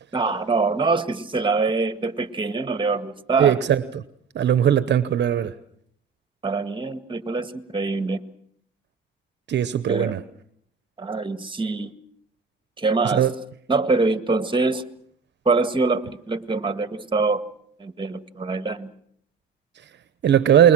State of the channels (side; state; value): left; quieter; 5.7 dB